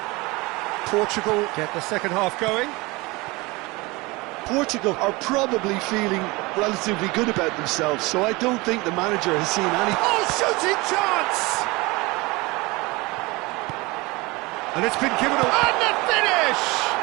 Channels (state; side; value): quieter; left; 23.6 dB